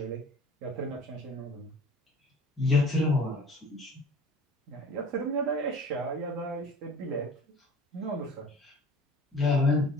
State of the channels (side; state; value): both; normal; correlation 0.44